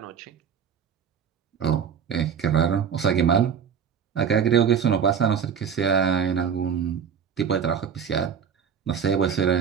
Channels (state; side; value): quieter; left; 7.5 dB